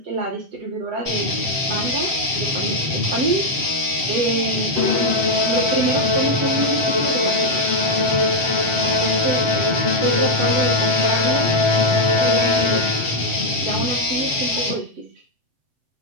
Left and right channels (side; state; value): left; late; 7.5 ms